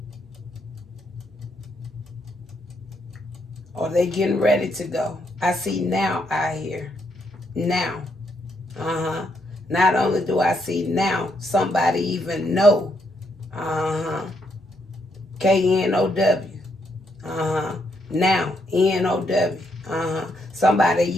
Or they getting ready to go. I see now out here. Now. Not only do I see now, somebody even know. K-N-O-W. Now. N-O-W.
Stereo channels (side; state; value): both; normal; correlation 0.76